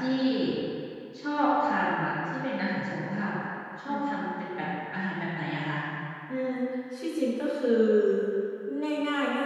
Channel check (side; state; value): both; identical; correlation 1.00